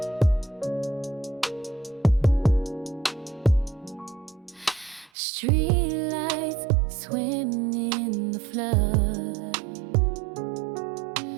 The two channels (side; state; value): left; drops out; at 5.1 s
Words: Streetlights swim in the flood,